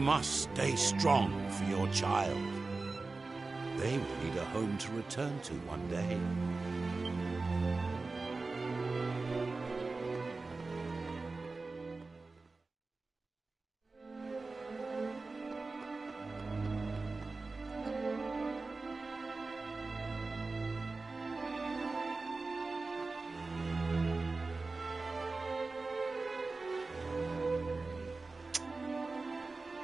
stay strong for your child. They will need a home to return to one day.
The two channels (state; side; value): quieter; left; 3.7 dB